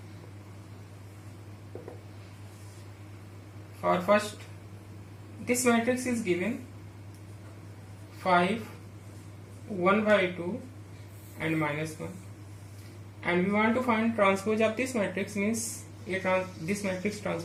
For first this matrix is given 5, 1 by 2 and minus 1. And we want to find transpose of this matrix, means this matrix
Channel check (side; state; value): both; identical; correlation 1.00